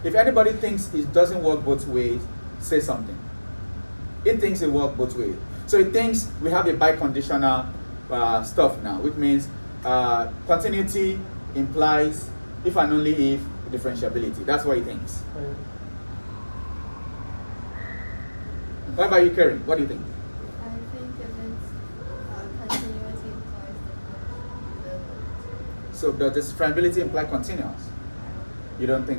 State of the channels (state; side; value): inverted; both; correlation -1.00